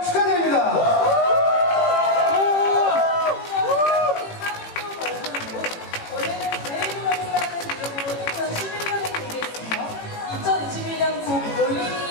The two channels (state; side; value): late; right; 18 ms